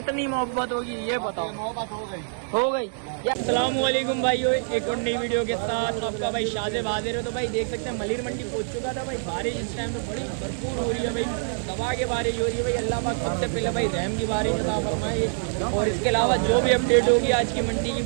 मोहब्बत होगी ये बताओ। मोहब्बत हो गई। अस्सलाम वालेकुम भाइयों, एक और नई वीडियो के साथ आपका भाई शाज़ेब हाजिर है। तो भाई देख सकते हैं मलिर मंडी पहुंच चुका था भाई। बारिश इस टाइम में बड़ी भरपूर हो रही है भाई, दबा के बारिश हो रही है भाई। अल्लाह पाक सबसे पहले भाई रहम की बारिश अता फरमाए। और इसके अलावा जो भी अपडेट होगी आज की मंडी की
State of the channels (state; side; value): silent; left; 61 dB below the other